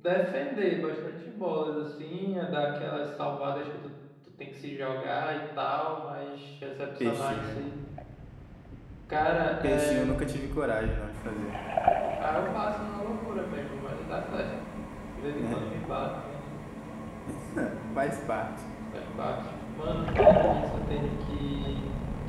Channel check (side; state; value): both; identical; correlation 1.00